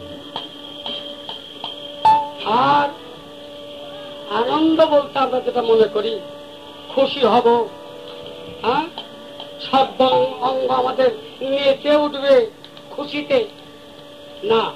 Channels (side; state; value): both; identical; correlation 1.00